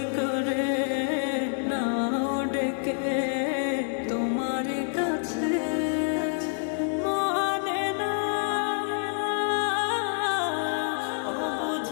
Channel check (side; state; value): right; silent; digital silence